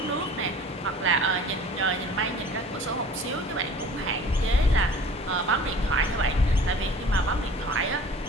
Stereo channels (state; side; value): normal; both; correlation 0.45